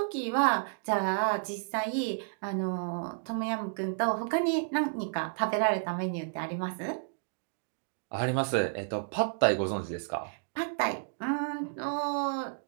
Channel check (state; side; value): silent; left; digital silence